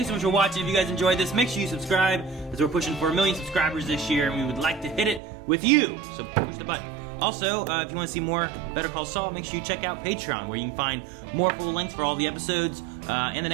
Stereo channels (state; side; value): drops out; left; at 5.2 s